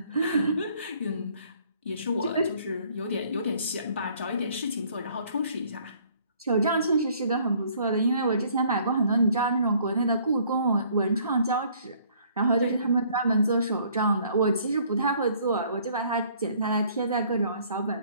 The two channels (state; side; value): inverted; both; correlation -0.60